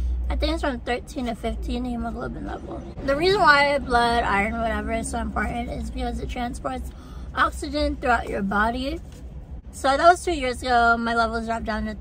I think it's from 13 to 15 hemoglobin level. The reason why blood, iron, whatever is so important is because it transports oxygen throughout your body. So that was 2 years ago. My levels dropped down to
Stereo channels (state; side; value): identical; both; correlation 1.00